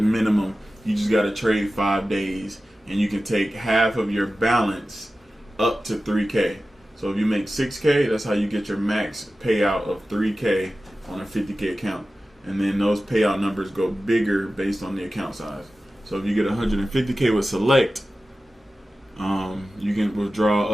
minimum. You just got to trade 5 days. And you can take half of your balance up to 3K. So if you make 6K, that's how you get your max payout of 3K on a 50K account. And then those payout numbers go bigger based on the account size. So if you get 150K with select, you can withdraw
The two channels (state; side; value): normal; both; correlation 0.95